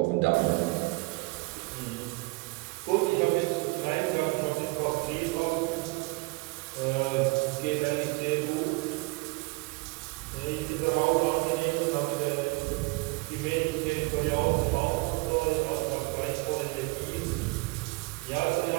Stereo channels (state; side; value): quieter; left; 26.0 dB